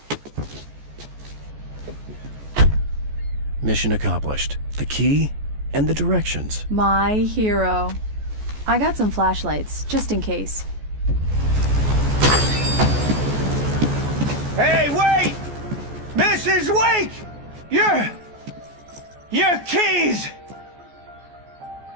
Mission accomplished. The key and the directions. My hero. I got some flashlights, just in case. Hey, wait! Mrs. Wake! Your keys!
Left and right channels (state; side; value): late; left; 14 ms